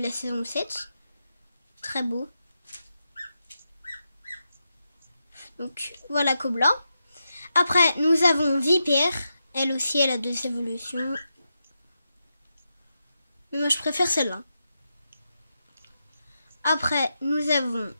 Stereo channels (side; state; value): both; inverted; correlation -0.87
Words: la saison 7. Très beau. Donc, voilà Cobla. Après, nous avons Vipère. Elle aussi, elle a 2 évolutions. Mais moi, je préfère celle-là. Après, nous avons